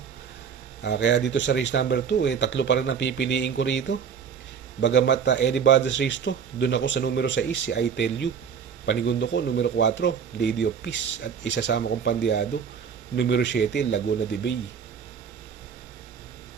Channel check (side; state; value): left; quieter; 7.0 dB